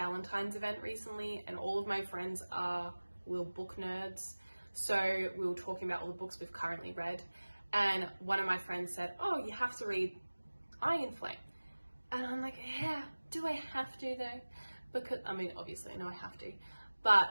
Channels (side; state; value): both; inverted; correlation -1.00